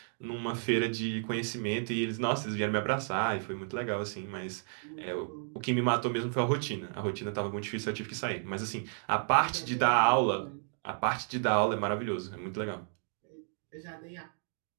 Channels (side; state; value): left; silent; 56 dB below the other